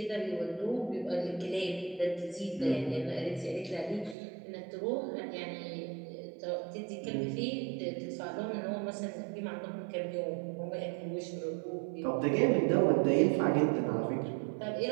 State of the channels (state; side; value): drops out; left; at 4.2 s